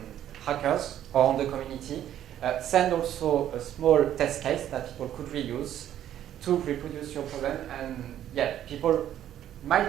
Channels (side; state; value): left; quieter; 11.2 dB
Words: hackers or on the community, send also a small test case that people could reuse to reproduce your problem. And yeah, people